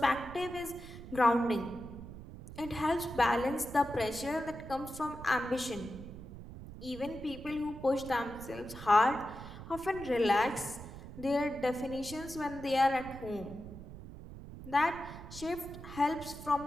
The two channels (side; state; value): right; noise; rumble, 13 dB below the sound